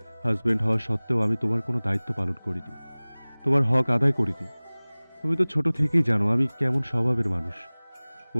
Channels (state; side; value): inverted; both; correlation -1.00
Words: হাজবেন্ড হওয়া সত্ত্বেও আমি তোমার কোনো দায়িত্ব পালন করিনি, তোমার হক আদায় করিনি। তুমি তো ছোট থেকেই জানো আমি কেমন স্বভাবের মানুষ।